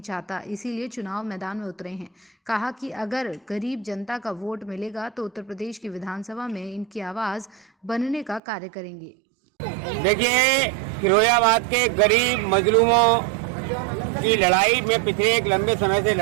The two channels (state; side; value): drops out; left; at 8.4 s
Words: चाहता, इसीलिए चुनाव मैदान में उतरे हैं। कहा कि अगर गरीब जनता का वोट मिलेगा तो उत्तर प्रदेश की विधानसभा में इनकी आवाज बनने का कार्य करेंगे। देखिए, फिरोजाबाद के गरीब मजलूमों की लड़ाई मैं पिछले एक लंबे समय से